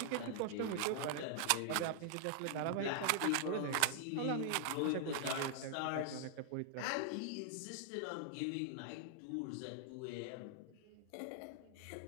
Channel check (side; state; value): both; different; correlation 0.00